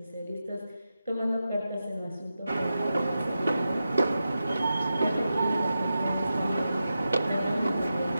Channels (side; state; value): both; inverted; correlation -0.91